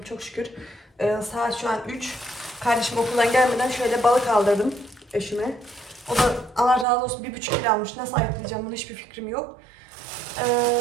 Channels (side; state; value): left; drops out; at 6.9 s